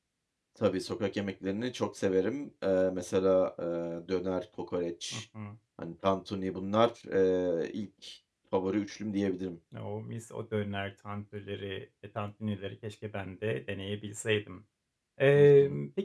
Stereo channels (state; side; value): identical; both; correlation 1.00